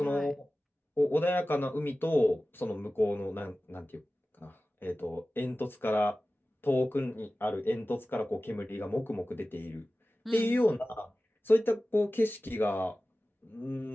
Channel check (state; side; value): normal; both; correlation 0.96